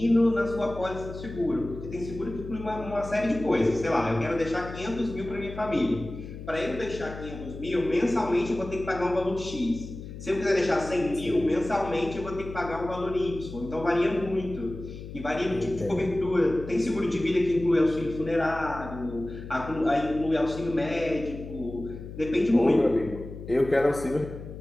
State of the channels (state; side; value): noise; left; hum, 11 dB below the sound